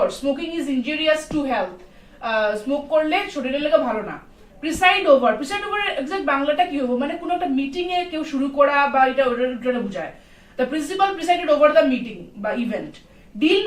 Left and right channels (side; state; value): both; identical; correlation 1.00